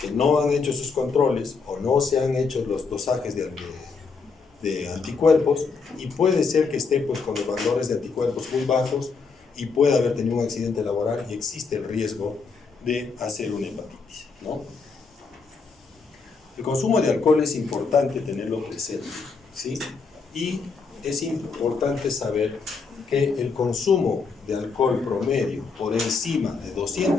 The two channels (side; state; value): right; quieter; 4.9 dB